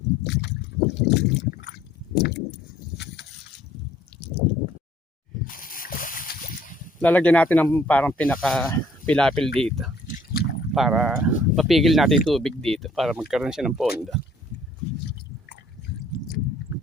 Lalagyan natin ng parang pinaka-pilapil dito para mapigil natin yung tubig dito para magkaroon siya ng pondo.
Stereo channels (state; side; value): normal; both; correlation 0.59